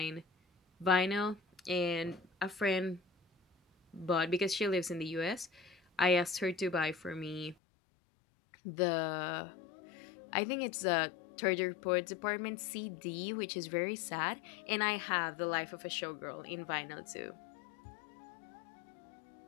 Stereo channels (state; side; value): drops out; right; at 7.6 s